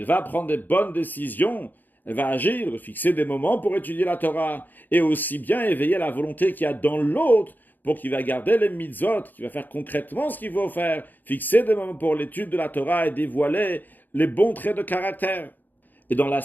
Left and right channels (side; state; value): right; late; 0.087 ms